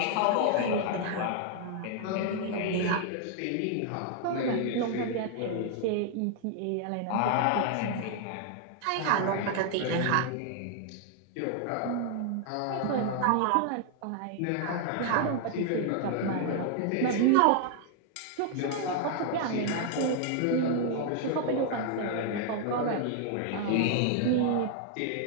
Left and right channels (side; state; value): both; different; correlation 0.00